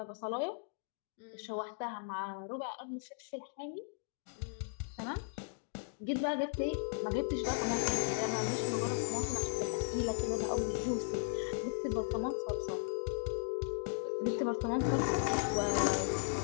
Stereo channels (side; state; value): right; silent; digital silence